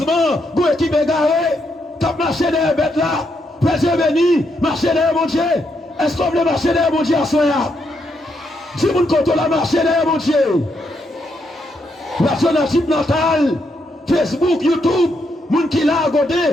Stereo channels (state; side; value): normal; both; correlation 0.78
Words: vous équipe égarée, t'as marché derrière la bête là, Dieu béni, marcher derrière mon Dieu. Est-ce qu'on veut marcher derrière mon Dieu à soi? Si vous comptez la marcher derrière mon Dieu, l'action natale, Facebook, YouTube, moun qui l'a regardé,